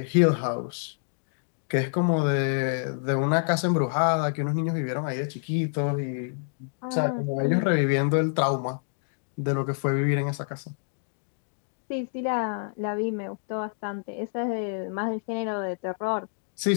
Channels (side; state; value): right; silent; digital silence